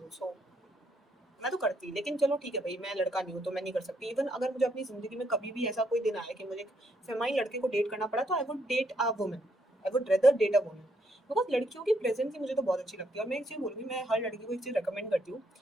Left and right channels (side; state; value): both; normal; correlation 0.74